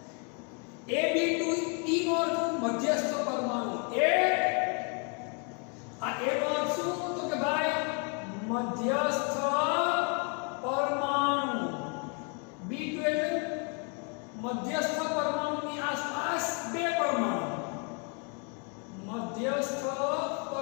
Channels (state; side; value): quieter; right; 37.3 dB